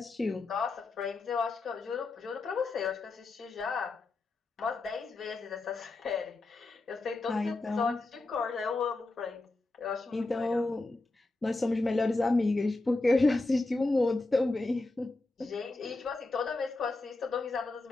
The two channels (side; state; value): right; quieter; 3.1 dB